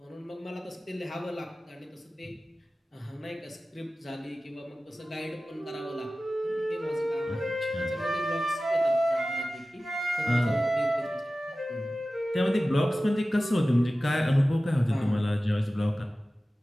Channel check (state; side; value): normal; both; correlation 0.96